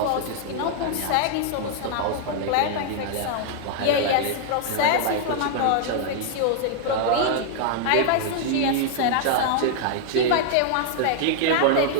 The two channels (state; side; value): different; both; correlation -0.01